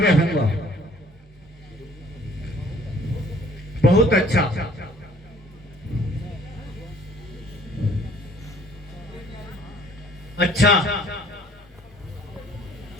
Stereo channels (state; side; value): normal; both; correlation 0.56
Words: बहुत अच्छा। अच्छा,